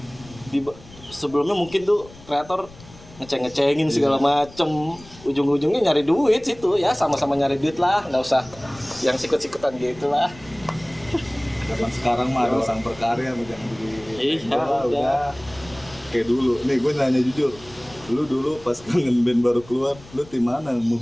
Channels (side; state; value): left; noise; rumble, 21 dB below the sound